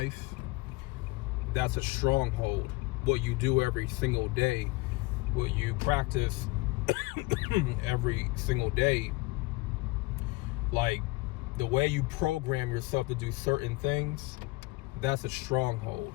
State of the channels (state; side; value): quieter; right; 22.2 dB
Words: that's a stronghold. What you do every single day, what you practice every single day, like the way you program yourself to do certain things, that's a stronghold.